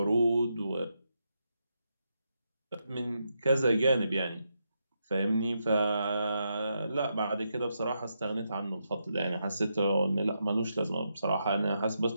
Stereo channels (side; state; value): both; inverted; correlation -0.83